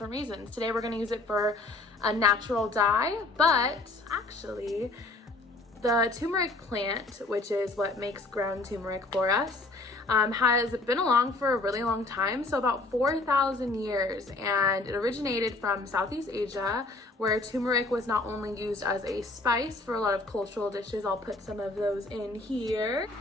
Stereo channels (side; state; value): right; quieter; 3.1 dB